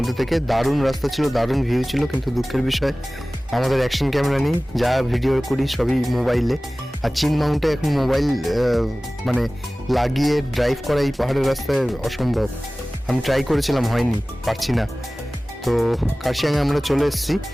থেকে দারুণ রাস্তা ছিল, দারুণ ভিউ ছিল, কিন্তু দুঃখের বিষয় আমাদের অ্যাকশন ক্যামেরা নেই। যা ভিডিও করি সবই মোবাইলে, আর চিন মাউন্টে এখন মোবাইল লাগিয়ে ড্রাইভ করা এই পাহাড়ের রাস্তায় অসম্ভব। আমি ট্রাই করেছিলাম, হয়নি, পারছি না। তো কার্শিয়াংয়ে আমরা চলে এসেছি।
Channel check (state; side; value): normal; both; correlation 0.98